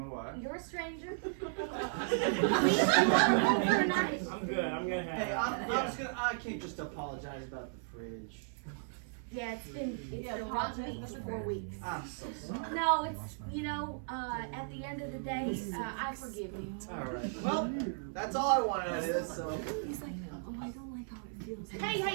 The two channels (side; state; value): left; silent; 54 dB below the other